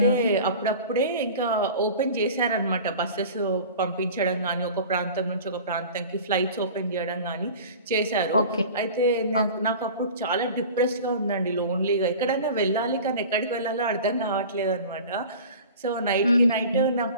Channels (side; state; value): both; inverted; correlation -0.39